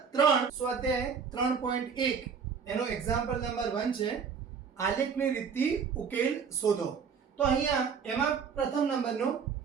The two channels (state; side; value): quieter; left; 6.3 dB